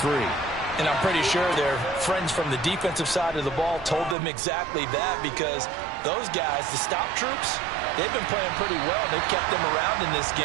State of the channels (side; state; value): left; drops out; at 4.2 s